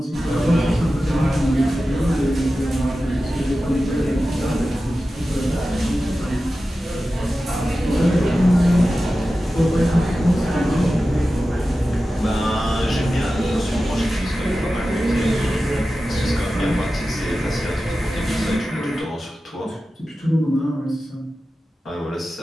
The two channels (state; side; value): normal; both; correlation 0.94